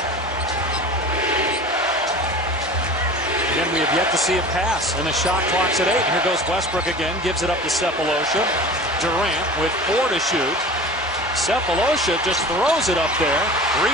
Again, we have yet to see a pass, and the shot clock's at 8. Here goes Westbrook again, gives it up to Sefolosha. Durant with 4 to shoot. Sefolosha just throws it up there.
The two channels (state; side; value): normal; both; correlation 0.38